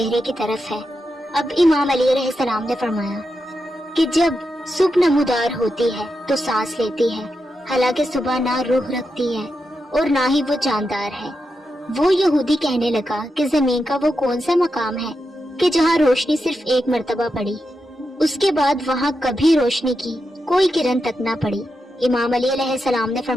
کی طرف ہے۔ اب امام علی علیہ السلام نے فرمایا کہ جب صبح نمودار ہوتی ہے تو سانس لیتی ہے، حالانکہ صبح نہ روح رکھتی ہے اور نہ ہی وہ جاندار ہے۔ وہ یہودی کہنے لگا کہ زمین کا وہ کون سا مقام ہے کہ جہاں روشنی صرف ایک مرتبہ پڑی، اس کے بعد وہاں کبھی روشنی کی کوئی کرن تک نہ پڑی؟ امام علی علیہ السلام نے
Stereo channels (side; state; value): both; normal; correlation 0.87